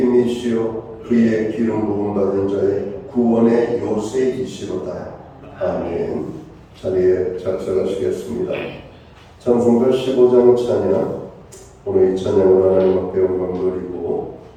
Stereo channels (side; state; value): both; identical; correlation 1.00